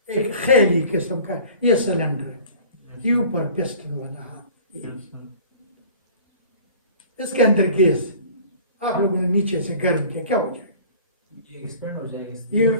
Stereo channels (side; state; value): both; inverted; correlation -0.46